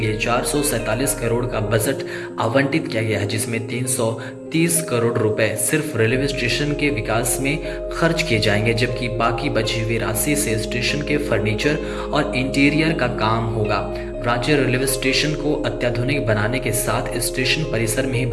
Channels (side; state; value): both; identical; correlation 1.00